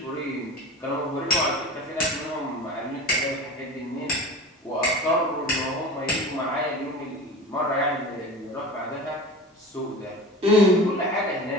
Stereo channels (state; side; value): normal; both; correlation 0.33